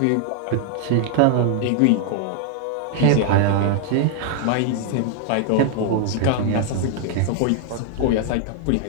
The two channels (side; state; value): both; different; correlation 0.00